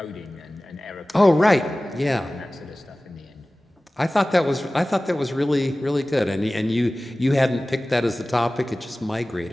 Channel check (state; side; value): normal; both; correlation 0.97